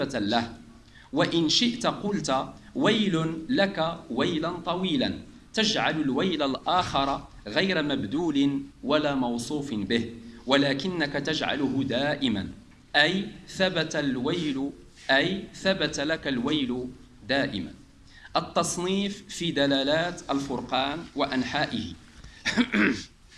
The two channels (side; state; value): both; identical; correlation 1.00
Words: له، وإن شئت قلت ويل لك ويلا طويلا، تجعل الويل الآخر غير مبدول ولا موصوف به، ولكنك تجعله دائما، أي ثبت الويل، أي ثبت لك الويل دائما. التصنيف في دلالات الفرقان وأنحائه.